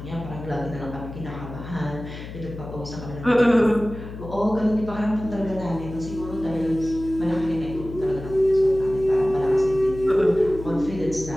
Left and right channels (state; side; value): noise; left; hum, 11 dB below the sound